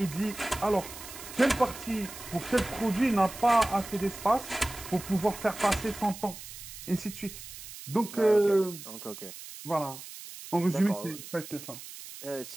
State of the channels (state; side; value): noise; right; hiss, 13 dB below the sound